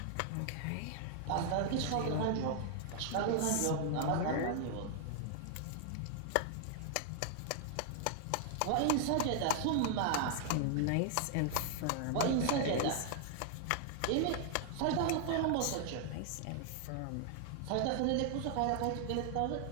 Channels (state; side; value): different; both; correlation 0.00